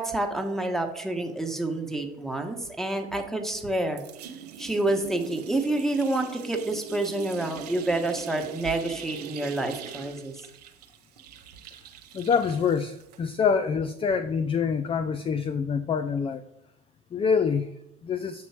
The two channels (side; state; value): both; normal; correlation 0.60